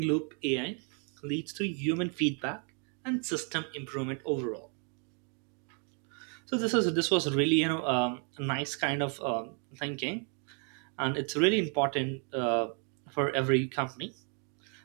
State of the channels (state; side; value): quieter; left; 39.5 dB